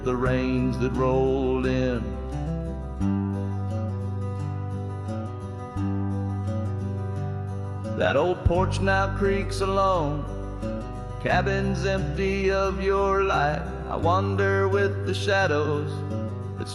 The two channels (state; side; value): identical; both; correlation 1.00